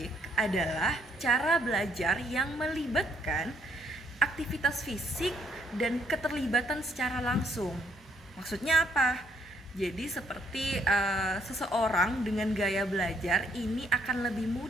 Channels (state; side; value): normal; both; correlation 0.69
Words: adalah cara belajar yang melibatkan aktivitas fisik dan keterlibatan secara langsung. Maksudnya apa? Jadi seperti seseorang dengan gaya belajar ini akan lebih